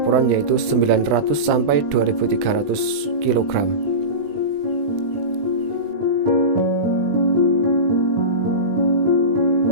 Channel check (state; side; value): late; left; 20 ms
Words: yaitu 900 sampai 2300 kg.